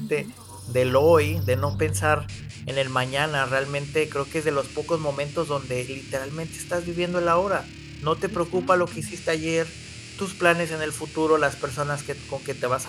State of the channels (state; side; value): identical; both; correlation 1.00